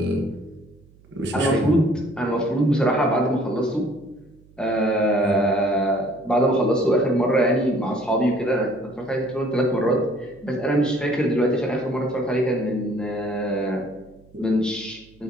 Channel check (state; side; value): noise; right; hum, 27 dB below the sound